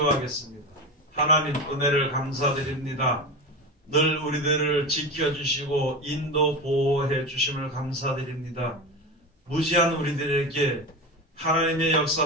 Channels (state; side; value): normal; both; correlation 0.23